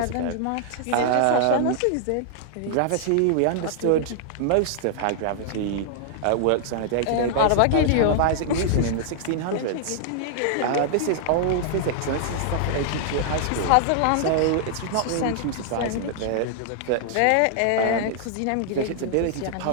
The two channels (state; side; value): different; both; correlation -0.01